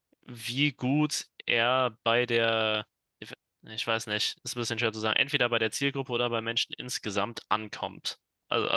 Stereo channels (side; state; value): both; identical; correlation 1.00